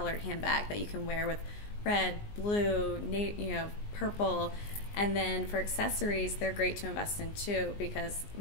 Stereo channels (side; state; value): right; late; 19 ms